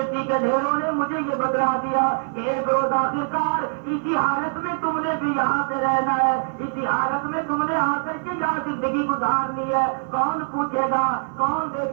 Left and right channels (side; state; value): left; silent; digital silence